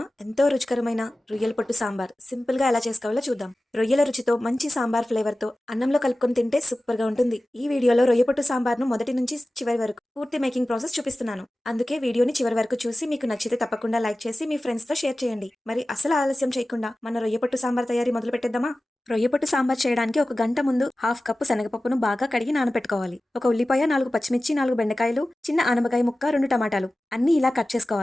ఎంతో రుచికరమైన రొయ్యల పొట్టు సాంబార్ సింపుల్ గా ఎలా చేసుకోవాలో చూద్దాం. రొయ్యల రుచితో మంచి సాంబార్ ఫ్లేవర్ తో అన్నంలో కలుపుకొని తింటే సూపర్ గా ఉంటుంది. ఈ వీడియోలో రొయ్య పొట్టు సాంబార్ ను మొదటి నుంచి చివరి వరకు పూర్తి మేకింగ్ ప్రాసెస్ చూపిస్తున్నాను. అందుకే వీడియోని చివరి వరకు చూసి మీకు నచ్చితే తప్పకుండా లైక్ చేసి మీ ఫ్రెండ్స్ తో షేర్ చేయండి. మరి అసలు ఆలస్యం చేయకుండా మన రొయ్య పొట్టు సాంబార్ తయారీ మొదలు పెట్టేద్దామా? రొయ్యపొట్టు సాంబార్ చేయడానికి ఒక గంట ముందు హాఫ్ కప్పు శనగపప్పును బాగా కడిగి నానబెట్టుకోవాలి. ఒక ఉల్లిపాయ, 4 పచ్చిమిర్చి, 4 బెండకాయలు, చిన్న ఆనపకాయ ముక్క, 2 టమాటాలు అన్ని ఇలా కట్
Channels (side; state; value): both; normal; correlation 0.96